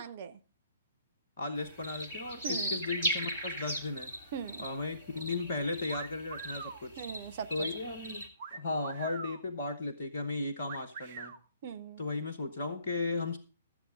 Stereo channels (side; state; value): both; inverted; correlation -0.64